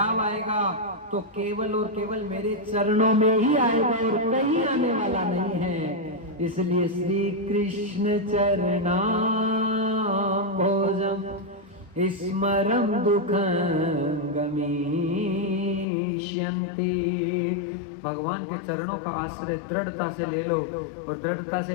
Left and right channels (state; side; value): drops out; right; at 15.9 s